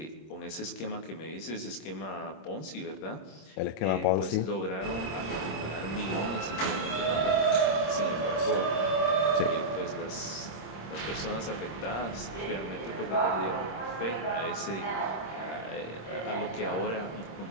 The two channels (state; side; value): late; right; 26 ms